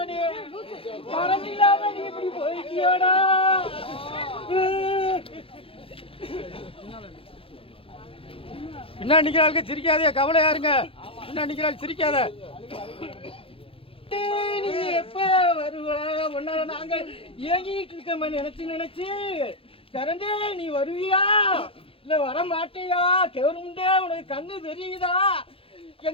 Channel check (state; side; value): late; right; 0.27 ms